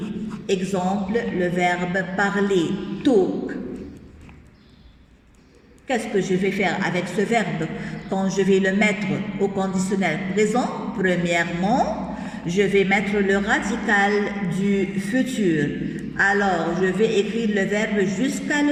Exemple, le verbe parler. Talk. Qu'est-ce que je vais faire avec ce verbe quand je vais le mettre au conditionnel présent? Premièrement, je vais mettre le radical du futur. Alors, je vais écrire le verbe jusqu'à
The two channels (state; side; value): identical; both; correlation 1.00